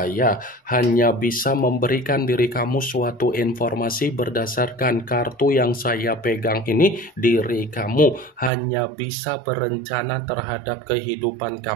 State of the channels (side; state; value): left; drops out; at 8.5 s